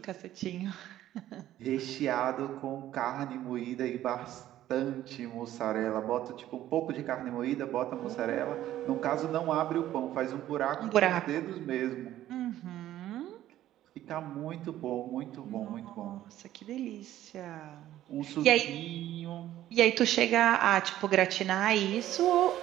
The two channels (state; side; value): quieter; left; 13.2 dB